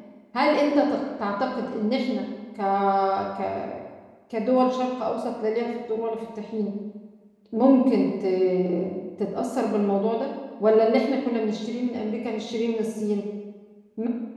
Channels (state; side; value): identical; both; correlation 1.00